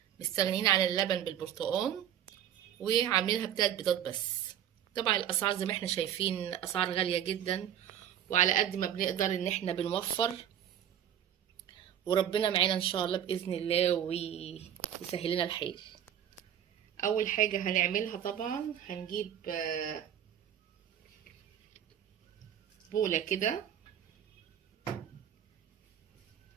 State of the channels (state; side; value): quieter; left; 10.2 dB